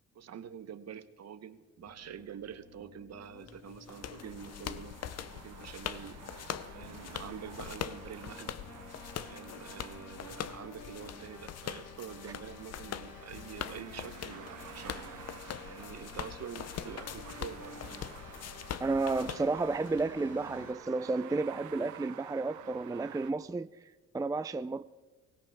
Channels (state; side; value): normal; both; correlation 0.59